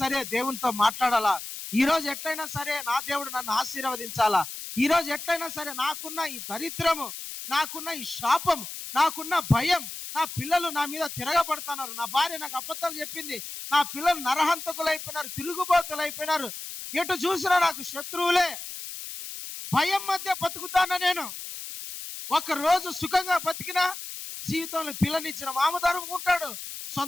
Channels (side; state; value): left; noise; hiss, 9 dB below the sound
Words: సరే దేవునితో మాట్లాడాలా, ఈ రోజు ఎట్లయినా సరే నా దేవుడు నన్ను ఆశీర్వదించాలా, ఈ రోజు ఎట్లయినా సరే నాకున్న ఈ దరిద్రము, నాకున్న ఈ శాపం, నాకున్న భయం, నా పిల్లలు నా మీద తిరగబడుతున్నారు, నా భార్య నాకు అబద్ధాలు చెప్పింది, నా పిల్లలు నరహంతకులు అయిపోయినారు, తిరుగుబోతులు అయిపోయినారు, ఎటు చూసినా నాకు శత్రువులే, భయం మధ్య బతుకుతానా నేను. ఒక రోజు సుఖంగా బతికినా జీవితంలో పిల్లనిచ్చిన మామ ధరుముకుంటాడు,